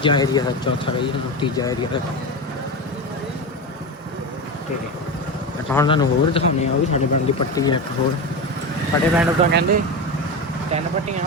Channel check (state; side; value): normal; both; correlation 0.20